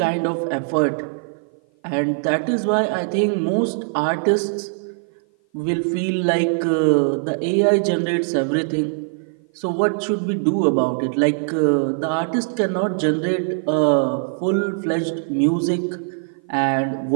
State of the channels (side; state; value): left; silent; 55 dB below the other